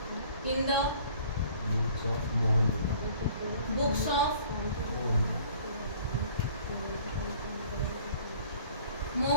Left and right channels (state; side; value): inverted; both; correlation -0.53